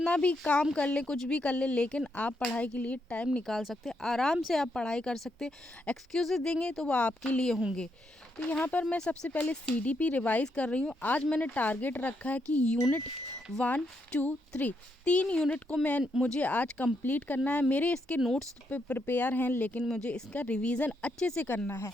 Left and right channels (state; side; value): normal; both; correlation 0.79